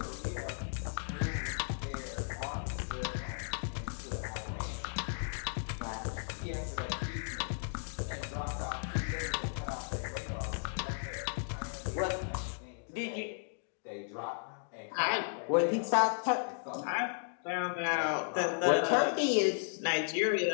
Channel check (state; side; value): silent; right; digital silence